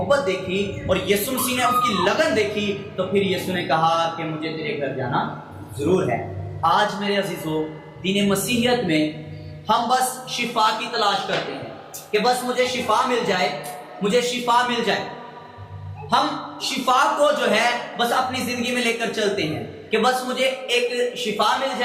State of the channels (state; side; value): identical; both; correlation 1.00